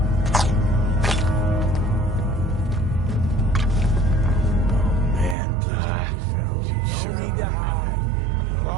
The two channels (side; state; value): left; drops out; at 5.4 s